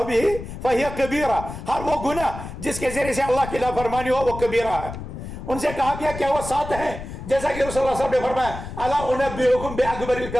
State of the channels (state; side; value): noise; left; rumble, 10 dB below the sound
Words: بھی فہی کبیرہ، ہر وہ گناہ جس کے ذریعے سے اللہ کی نافرمانی ہو وہ کبیرہ ہے۔ ان سے کہا گیا کیا وہ 7 ہیں؟ جیسا کہ رسول اللہ صلی اللہ علیہ وسلم نے فرمایا الا انبئکم باکبر